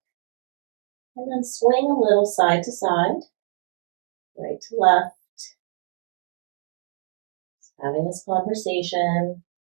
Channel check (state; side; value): silent; left; digital silence